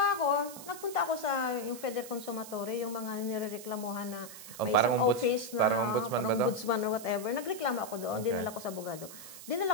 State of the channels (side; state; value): right; noise; hiss, 14 dB below the sound